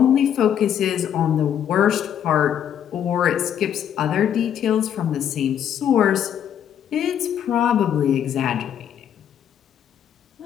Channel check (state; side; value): quieter; right; 9.4 dB